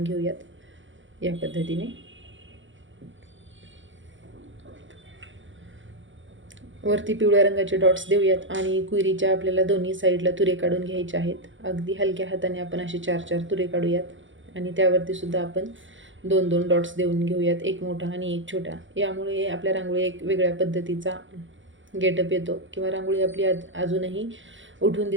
घेऊयात या पद्धतीने. वरती पिवळ्या रंगाचे डॉट्स देऊयात आणि क्वेरीच्या आपल्याला दोन्ही साईडला तुरे काढून घ्यायचे आहेत. अगदी हलक्या हाताने आपण असे 4-4 तुरे काढूयात आणि त्यावरती सुद्धा आपण 2-2 डॉट्स देऊन घेऊयात, एक मोठा आणि एक छोटा. यामुळे आपल्या रांगोळी एक वेगळ्या पद्धतीचा गेटअप येतो किंवा रांगोळी आपली अजूनही उठून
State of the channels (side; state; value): left; late; 0.56 ms